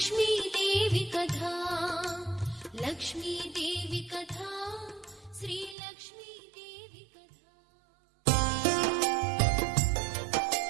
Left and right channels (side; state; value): left; drops out; at 5.8 s